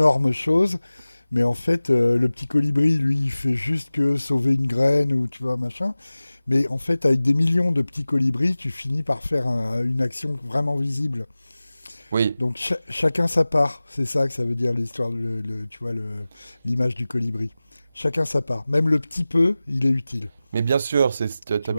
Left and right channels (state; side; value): inverted; both; correlation -0.97